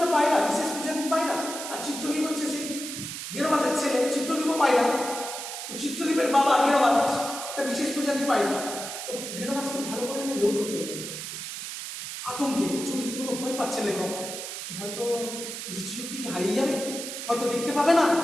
পায়রা, বিশেষ প্রজাতির পায়রা, আর চিত্রশিল্প হচ্ছে সেই গেরোবাজের ছেলে, চিত্রশিল্প পায়রা। তো চিত্রশিল্পের বাবা গেরোবাজ একটা বিশেষ প্রজাতির পায়রা। তো গেরোবাজকে ভালো করে এনে লক্ষ্য করলেন, আতঙ্কে রীতিমতো ভয় পাচ্ছে লেখক যে হয়তো দৃষ্টিশক্তি কি হারিয়ে যাবে, হয়তো দেখতে পাবে না,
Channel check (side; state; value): right; noise; hiss, 7 dB below the sound